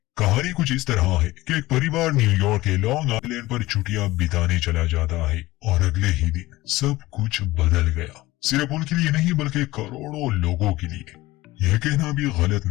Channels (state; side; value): quieter; right; 18.3 dB